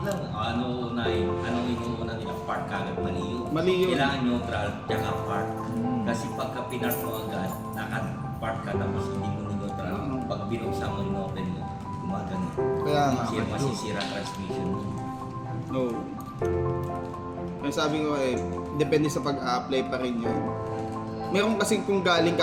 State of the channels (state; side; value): identical; both; correlation 1.00